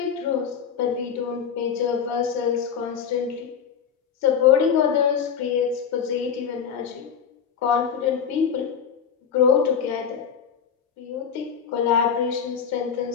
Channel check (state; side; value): quieter; right; 7.4 dB